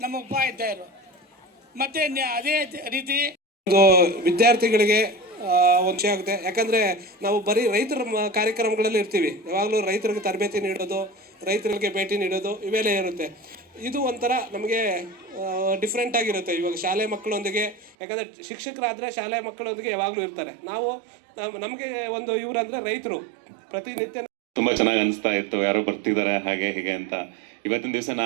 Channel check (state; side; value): drops out; left; at 17.9 s